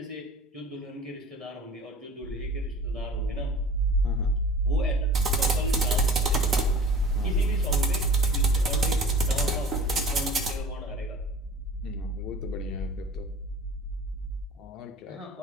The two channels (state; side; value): normal; both; correlation 0.43